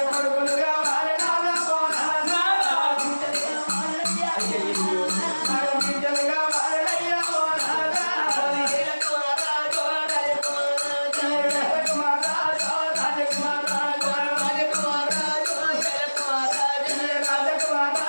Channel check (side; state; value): both; inverted; correlation -1.00